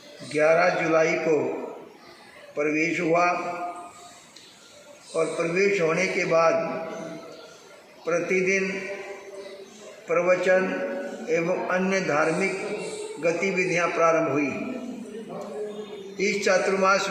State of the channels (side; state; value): both; identical; correlation 1.00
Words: 11 जुलाई को प्रवेश हुआ और प्रवेश होने के बाद प्रतिदिन प्रवचन एवं अन्य धार्मिक गतिविधियां प्रारंभ हुई। इस चातुर्मास